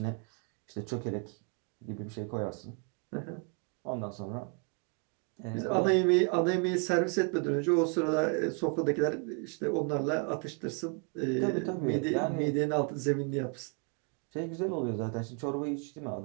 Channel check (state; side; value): quieter; left; 37.0 dB